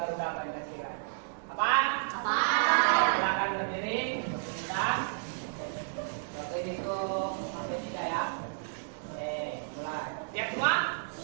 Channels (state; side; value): silent; left; digital silence